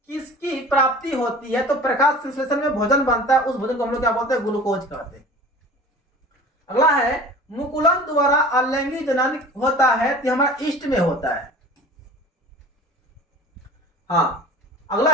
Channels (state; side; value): normal; both; correlation 0.41